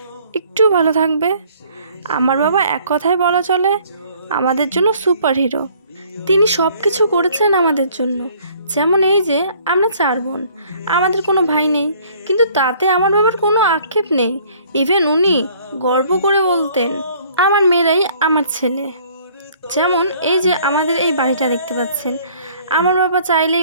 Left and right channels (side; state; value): both; inverted; correlation -0.57